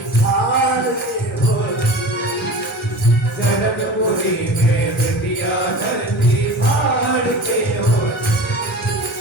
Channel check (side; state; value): both; normal; correlation 0.35